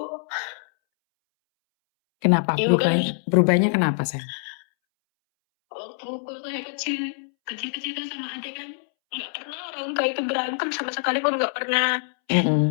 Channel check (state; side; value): silent; right; 62 dB below the other